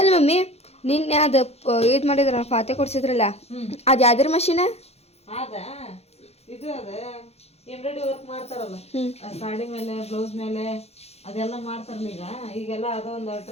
ಮಮ್ಮಿ ನಿನ್ನೆ ಅದು ಇದು ಮಾಡಿದ್ರ ಫಾತೆ ಕೊಡ್ಸಿದ್ರಲ್ಲ, ಅದು ಯಾವ್ದ್ರ ಮಷೀನ? ಇದು ಎಂಬ್ರಾಯ್ಡ್ರಿ ವರ್ಕ್ ಮಾಡ್ತಾರಲ್ಲ ಸಾಡಿ ಮೇಲೆ ಬ್ಲೌಸ್ ಮೇಲೆ ಅದೆಲ್ಲ ಮಾಡ್ತಾರಲ್ಲ ಈಗೆಲ್ಲ ಅದೊಂದು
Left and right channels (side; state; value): right; late; 0.30 ms